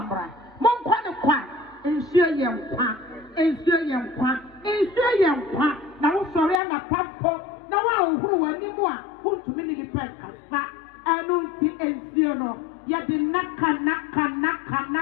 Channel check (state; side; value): drops out; right; at 6.6 s